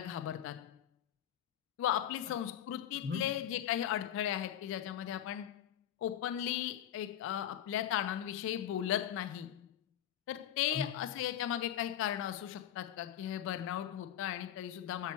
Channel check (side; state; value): right; quieter; 10.8 dB